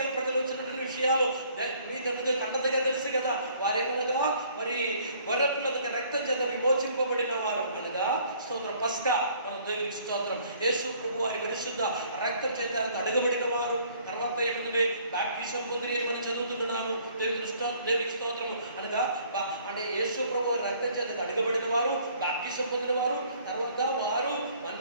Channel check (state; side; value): inverted; both; correlation -0.59